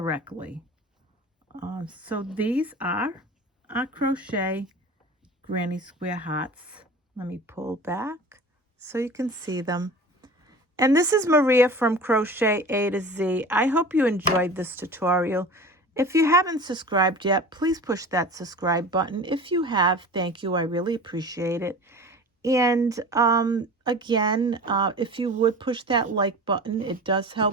So these are our crochet Granny Square hearts. Let me pull back so you can see them. And this is Maria from Crochet A to Z. I hope you enjoyed this tutorial. If you haven't subscribed yet, please push that subscribe button. If you have, thank you. I really appreciate it. And again, if you would push that like button, it does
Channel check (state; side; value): normal; both; correlation 0.37